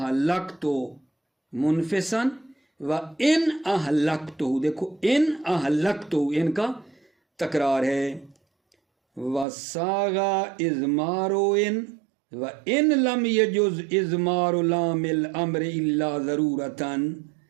منفسن و ان اہلکتو، دیکھو ان اہلکتو، ان کا تکرار ہے۔ وَسَاغَ اِزْمَارُ ان وَإِن لَمْ يَجُزْ اِزْمَارُ لَامِ الْأَمْرِ إِلَّا ضَرُورَةً،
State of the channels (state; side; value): drops out; left; at 9.5 s